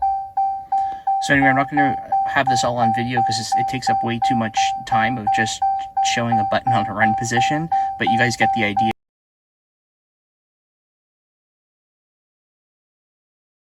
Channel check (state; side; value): identical; both; correlation 1.00